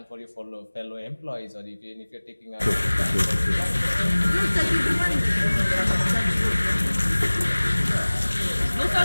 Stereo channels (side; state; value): both; inverted; correlation -1.00